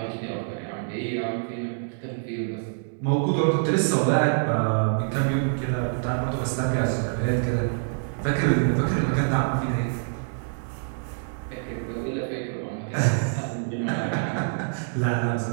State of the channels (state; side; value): silent; left; digital silence